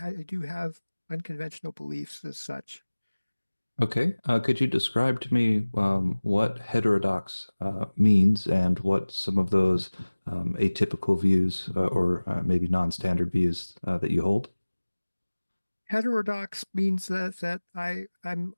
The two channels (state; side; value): inverted; both; correlation -1.00